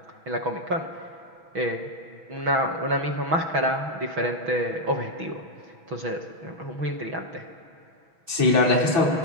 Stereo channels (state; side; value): late; left; 6.1 ms